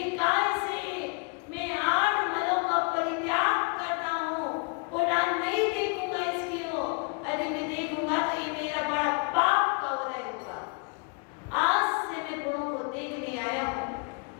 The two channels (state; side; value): quieter; right; 34.9 dB